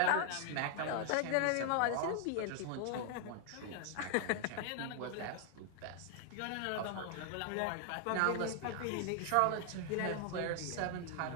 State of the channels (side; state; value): both; different; correlation 0.00